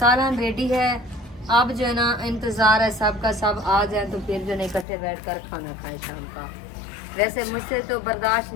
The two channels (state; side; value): drops out; right; at 4.9 s